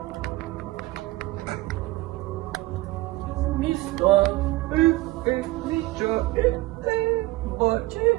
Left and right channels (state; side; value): quieter; left; 19.5 dB